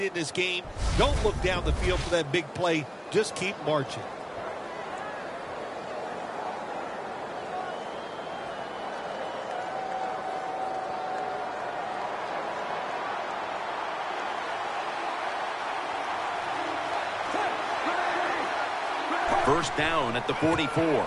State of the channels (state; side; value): identical; both; correlation 1.00